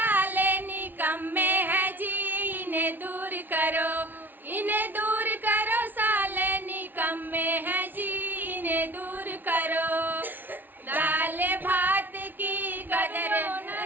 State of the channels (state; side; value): late; left; 0.089 ms